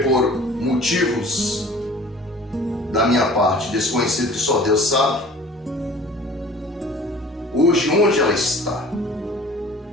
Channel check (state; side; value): normal; both; correlation 0.46